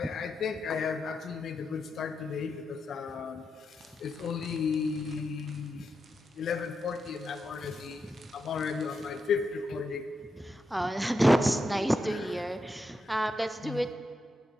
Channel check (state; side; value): normal; both; correlation 0.85